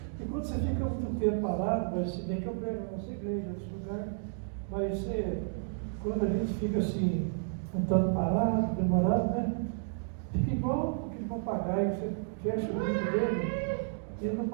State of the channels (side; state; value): left; silent; digital silence